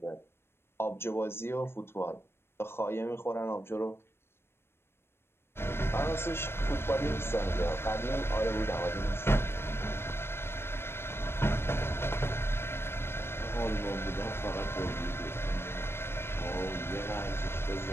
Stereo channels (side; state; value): right; late; 0.12 ms